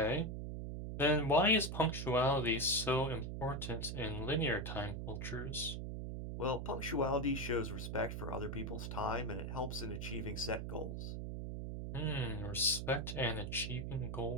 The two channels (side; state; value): right; noise; hum, 5 dB below the sound